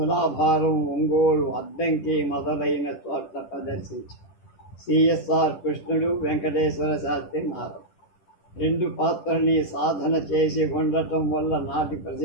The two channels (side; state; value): right; late; 10 ms